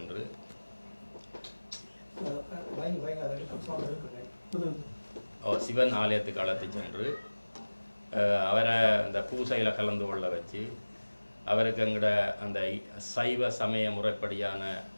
சிவன் ஆலயத்துக்கு அழைத்து சென்று அவரை அந்த பூசையில் கலந்து கொள்ள வச்சு அவருக்கு எங்கட அந்த சைவ சமய முறைப்படியான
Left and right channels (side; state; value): both; inverted; correlation -1.00